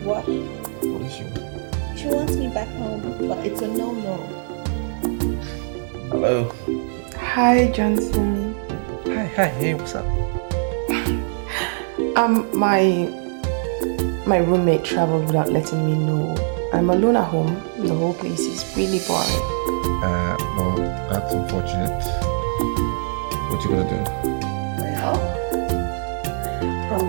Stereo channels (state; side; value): silent; left; digital silence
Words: What? What does she want? She wants me back home, but it's a no-no. Hello. Hi, Johnson. Hi, hey, what's up? My roommate traveled without letting me know. I'm alone at home. The whole place is really boring. Well, that's unfortunate. What you gonna do? Well,